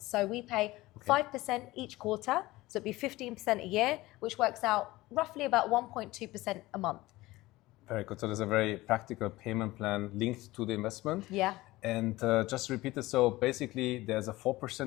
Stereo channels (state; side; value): quieter; right; 18.9 dB